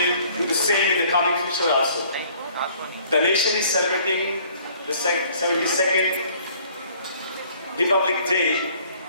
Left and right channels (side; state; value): both; inverted; correlation -0.57